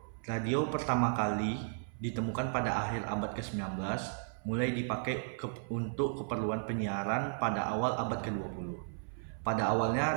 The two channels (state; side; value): silent; left; 55 dB below the other